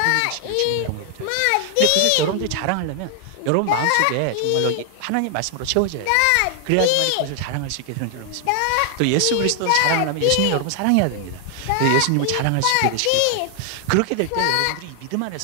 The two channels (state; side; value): different; both; correlation 0.00